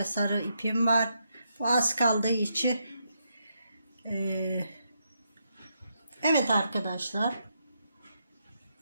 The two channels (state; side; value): inverted; both; correlation -0.80